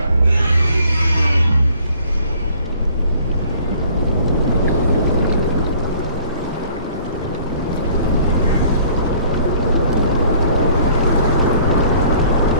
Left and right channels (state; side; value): inverted; both; correlation -0.55